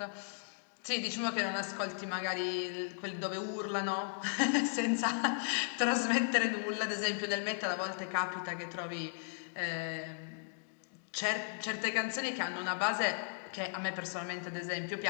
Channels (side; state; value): right; silent; digital silence